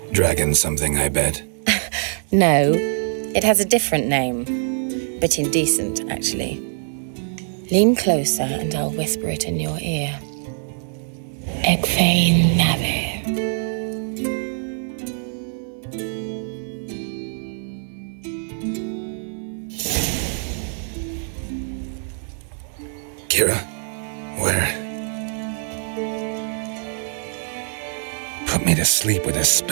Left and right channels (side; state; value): left; silent; 63 dB below the other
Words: Dragon something, I bet. No, it has a different name. But indecent, actually. Lean closer and I'll whisper it in your ear. Egfain Nave. Kira? Where? Put me to sleep with a